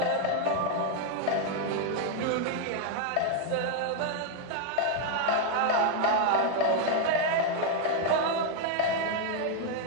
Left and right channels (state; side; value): different; both; correlation 0.00